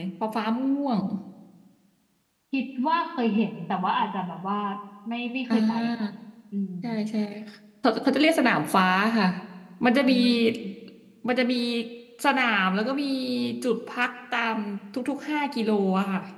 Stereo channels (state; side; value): identical; both; correlation 1.00